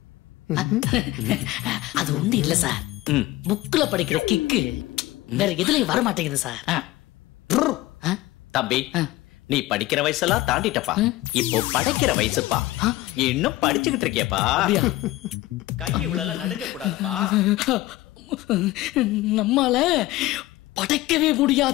அது ஒண்ணு இல்ல சார், புக்ல படிக்கிற கிக்கு வேற எதுலயும் வர மாட்டேங்குது சார். தம்பி, நீ படிக்கிற வயசெல்லாம் தாண்டிட்டப்பா, இப்போ படைக்கிற வயசுப்பா. இன்னும் படிச்சுக்கிட்டு இருக்கியப்பா, கை இவ்வளவு நடுங்க கூடாதுப்பா. நம்மால படைக்கவே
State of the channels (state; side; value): quieter; right; 17.6 dB